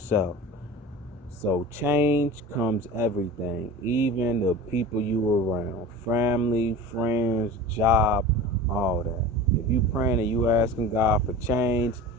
So change comes everything, even the people you were around, family, friends, job, all that. If you praying and you asking God for change,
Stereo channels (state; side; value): normal; both; correlation 0.34